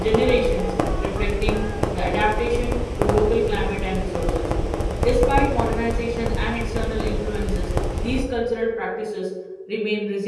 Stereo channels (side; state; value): both; identical; correlation 1.00